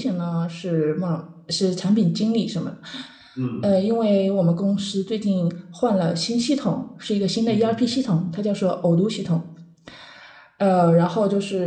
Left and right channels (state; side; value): identical; both; correlation 1.00